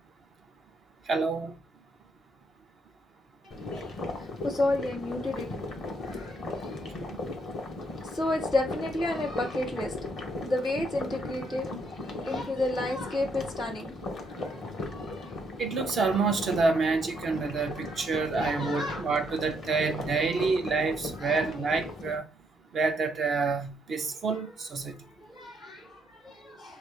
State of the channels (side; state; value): both; normal; correlation 0.73